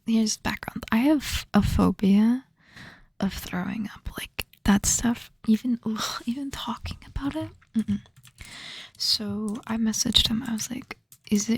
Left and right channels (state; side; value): identical; both; correlation 1.00